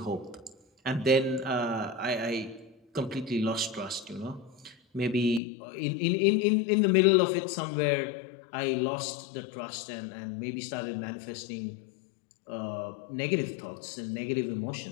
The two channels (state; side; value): drops out; right; at 5.4 s